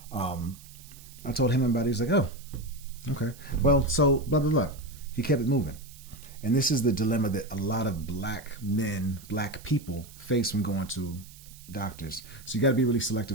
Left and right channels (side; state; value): right; noise; hiss, 20 dB below the sound